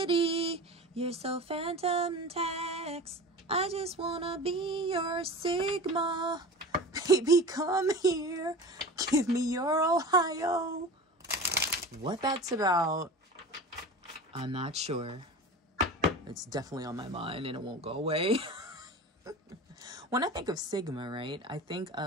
You're so phantom tax. I just wanna be your Sigma. Baby, come here. Give me your Ohio. What that's about, I'm not sure. It's definitely on my mind and it won't go away. When I think of Sigma, right, I think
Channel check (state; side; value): normal; both; correlation 0.33